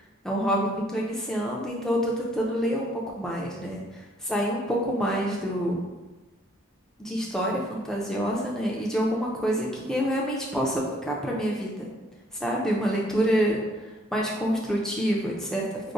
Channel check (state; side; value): normal; both; correlation 0.64